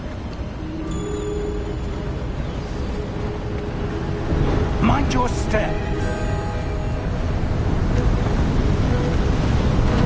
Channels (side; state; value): both; identical; correlation 1.00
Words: Mind your step.